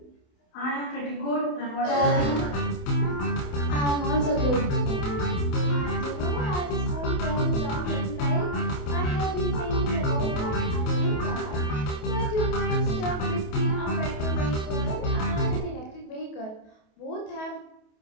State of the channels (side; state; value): right; late; 28 ms